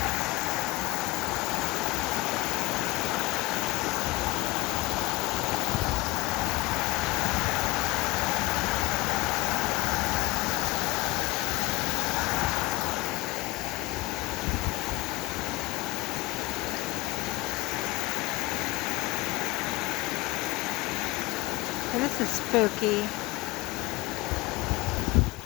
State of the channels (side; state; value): right; quieter; 21.5 dB